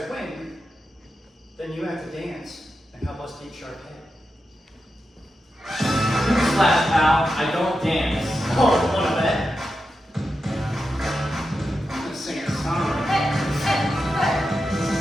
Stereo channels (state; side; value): normal; both; correlation 0.89